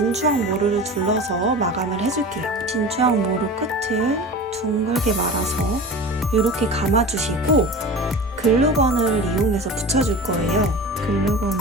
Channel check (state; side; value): normal; both; correlation 0.34